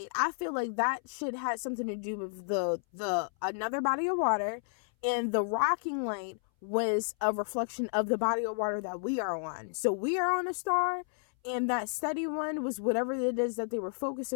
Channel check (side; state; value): right; silent; 57 dB below the other